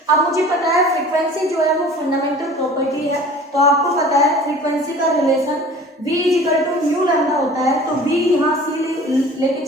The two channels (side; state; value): both; normal; correlation 0.44